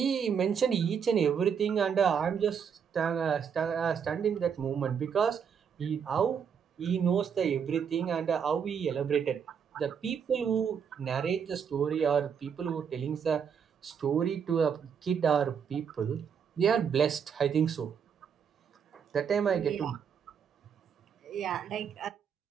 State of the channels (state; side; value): quieter; left; 7.2 dB